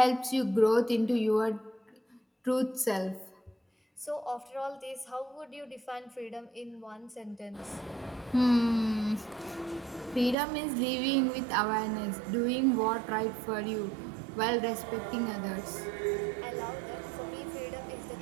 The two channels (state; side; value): drops out; left; at 10.4 s